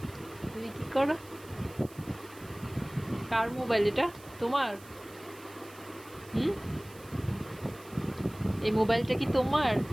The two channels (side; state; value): right; noise; hiss, 21 dB below the sound